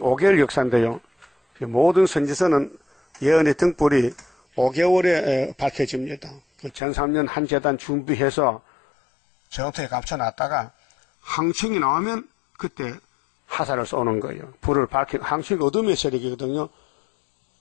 역사인데요. 모든 선지서는 예언의 등불이 5개월에 밝혀집니다. 전 3년 한 재단 준비해서 전투에 감춰놨다가 항충이 나오면 그때 화살을 쏘는 거예요. 불을 밝혀, 항충이 어둠의 세력이거든요.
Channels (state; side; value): drops out; right; at 6.8 s